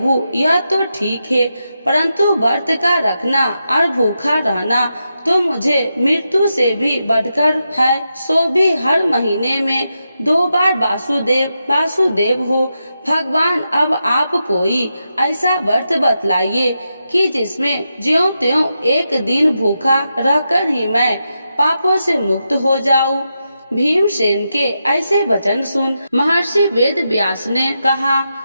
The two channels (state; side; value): inverted; both; correlation -0.87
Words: यह तो ठीक है, परंतु व्रत का रखना और भूखा रहना तो मुझे मृत्यु से भी बढ़कर है, सो भी हर महीने में 2 बार वासुदेव हो। भगवान, अब आप कोई ऐसा व्रत बतलाइए कि जिसमें ज्यों त्यों एक दिन भूखा रहकर ही मैं पापों से मुक्त हो जाऊं। भीमसेन के ऐसे वचन सुन महर्षि वेद व्यास ने कहा,